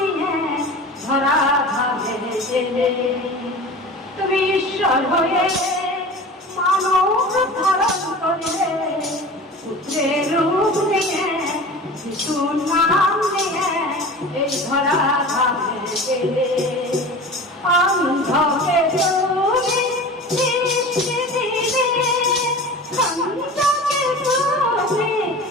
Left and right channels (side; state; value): both; normal; correlation 0.36